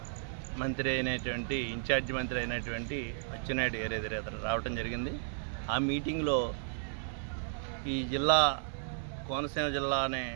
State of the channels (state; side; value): silent; left; 55 dB below the other